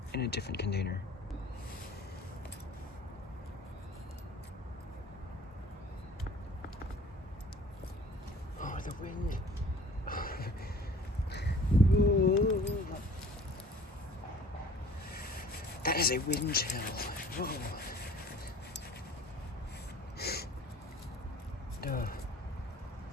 in a different container. Oh, the wind. That is a wind chill. Whoa.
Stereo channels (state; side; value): normal; both; correlation 0.49